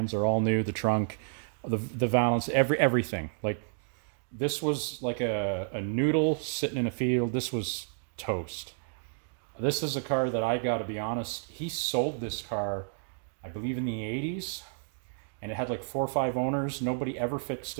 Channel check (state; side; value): silent; left; digital silence